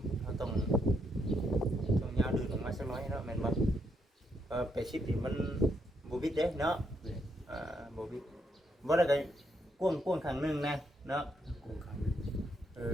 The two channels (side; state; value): both; normal; correlation 0.77